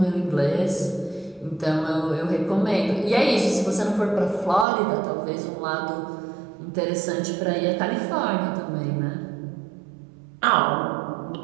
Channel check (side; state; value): left; drops out; at 4.7 s